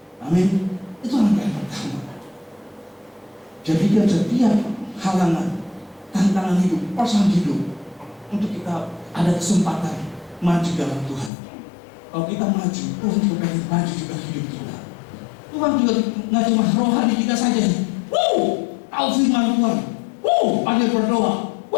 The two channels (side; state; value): right; drops out; at 11.3 s